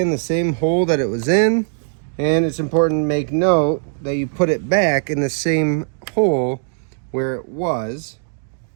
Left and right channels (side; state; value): left; silent; 66 dB below the other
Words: the same hole that it was in, and it's important to make note that you put it back in the same hole where it was,